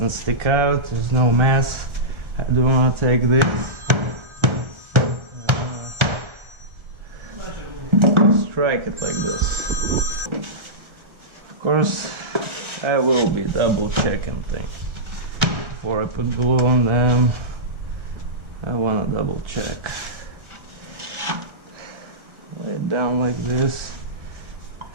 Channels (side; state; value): left; late; 1.4 ms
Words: stick out, there's no mess. I do want to take this, strike it like this. Of course, I will be double checking things before I put glue on them. I want to double check. Lay it down like this,